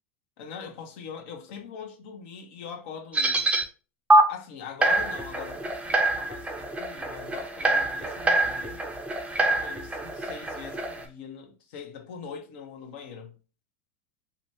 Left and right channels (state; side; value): normal; both; correlation 0.56